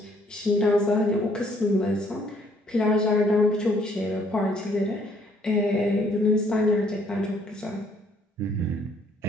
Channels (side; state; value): both; normal; correlation 0.65